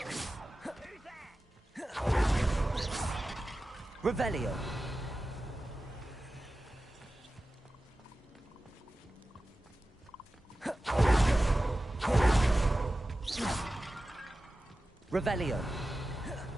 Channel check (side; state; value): both; normal; correlation 0.94